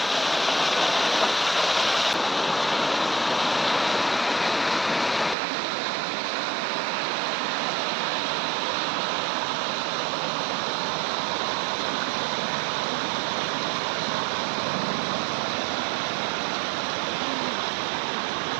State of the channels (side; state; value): left; drops out; at 5.4 s